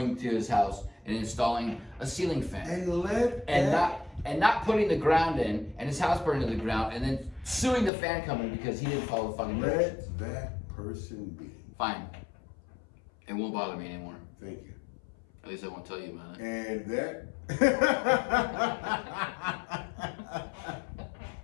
to his house and installing a ceiling fan and not putting the ground in and his house burning to the ground and then suing the fan company because he didn't follow the fucking directions. Let that person be. Fine. It won't bother me anymore. Thank you. At least I won't tell you about it. And that.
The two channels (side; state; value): right; drops out; at 7.9 s